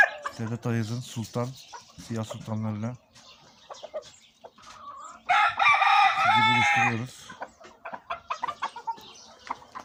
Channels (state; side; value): identical; both; correlation 1.00